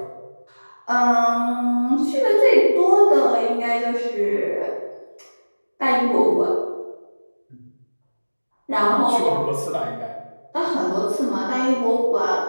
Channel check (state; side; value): inverted; both; correlation -1.00